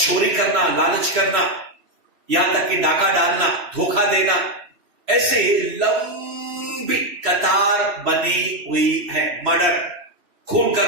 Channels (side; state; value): left; late; 3.1 ms